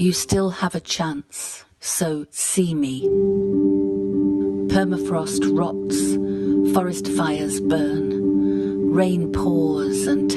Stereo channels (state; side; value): identical; both; correlation 1.00